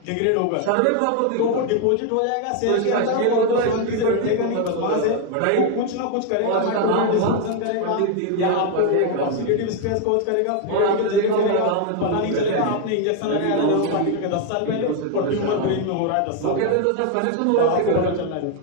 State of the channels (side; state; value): both; different; correlation 0.01